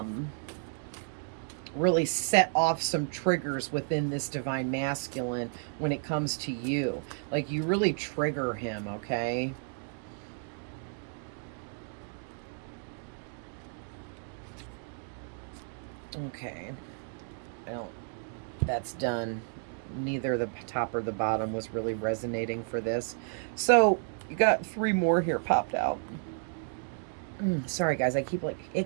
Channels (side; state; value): left; silent; 56 dB below the other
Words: set off some triggers within this divine masculine when it comes to you. Like, you really trigger him, okay? Okay. I don't, that's done. Neither the top or the bottom was really resonating for this. So, you got 3 more here popped out. Sorry, guys, I keep like